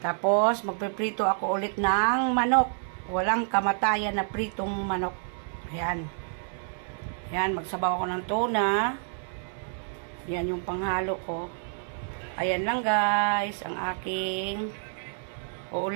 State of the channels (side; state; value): left; silent; digital silence